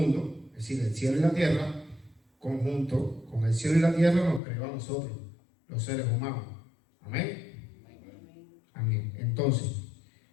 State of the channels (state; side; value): drops out; right; at 4.4 s